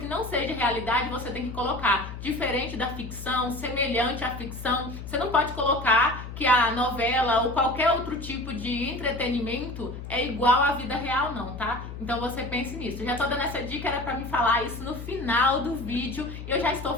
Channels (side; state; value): left; noise; hum, 10 dB below the sound